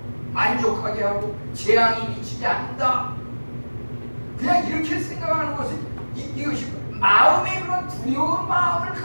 만족하게 하고 재앙이 미치지 않는다. 그냥 이렇게 생각하는 것은 이것이 마음의 그런 두려운 마음을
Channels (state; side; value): inverted; both; correlation -1.00